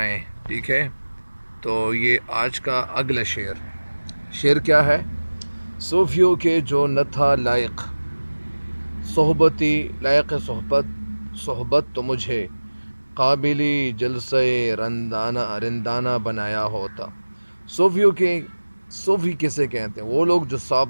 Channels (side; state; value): both; inverted; correlation -1.00